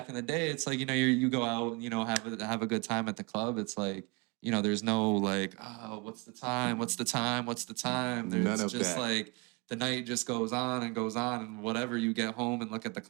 in the day, it's like, you go out and have a good time at the club. It's like, there's no like, oh, what's the time? What's the time? What's the time? There's none of just that. Like the night just goes on, and whatever, you get home and look at the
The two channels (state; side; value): quieter; left; 28.7 dB